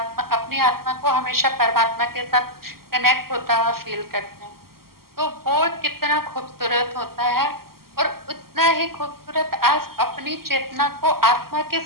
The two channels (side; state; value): left; late; 0.93 ms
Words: अपनी आत्मा को हमेशा परमात्मा के साथ कनेक्ट होता हुआ फील करते हैं, तो वो कितना खूबसूरत होता है। और उतना ही खूबसूरत आज अपनी चेतना को आत्मा के